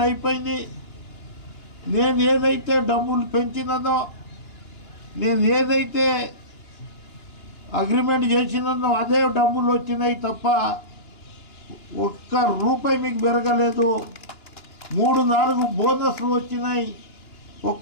అయిపోయింది. నేను ఏదైతే డబ్బులు పెంచినదో, నేను ఏదైతే అగ్రిమెంట్ చేసినదో అదే డబ్బులు వచ్చినాయి తప్ప ఒక్క రూపాయి మీకు పెరగలేదు. 3-4 బోనస్లు వచ్చినాయి,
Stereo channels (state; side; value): late; right; 2.9 ms